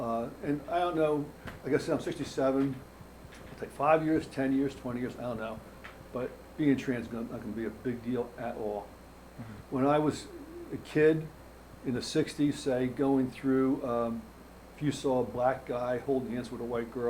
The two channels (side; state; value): both; identical; correlation 1.00